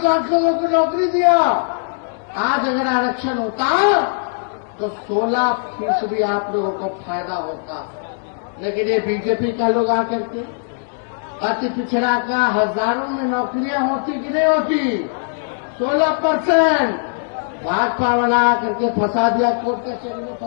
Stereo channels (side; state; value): right; silent; digital silence